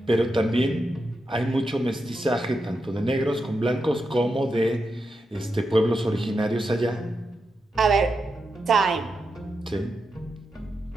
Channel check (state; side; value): normal; both; correlation 0.87